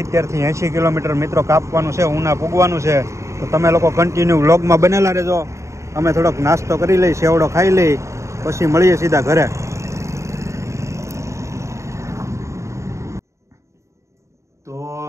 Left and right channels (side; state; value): left; late; 0.14 ms